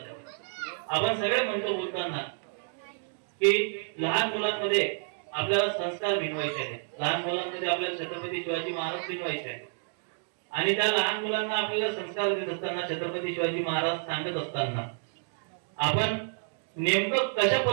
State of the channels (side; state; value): left; silent; digital silence